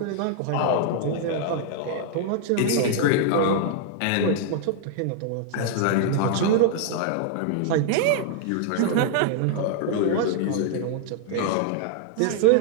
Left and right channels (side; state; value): both; different; correlation 0.00